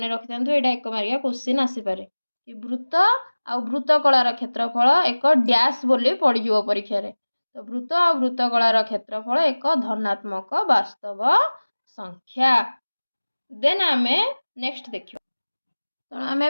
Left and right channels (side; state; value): both; inverted; correlation -1.00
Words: रखि था यहाँ एक मार्किया क्वेश्चन आसीपे कि वृत्त आ वृत्तकलार क्षेत्रफल एक डैश बोली पड़ज परीक्षा रे तो वृत्त और वृत्तकलार क्षेत्रफल एक धनात्मक वास्तव संख्या। देन आमे नेक्स्ट देखिबा तो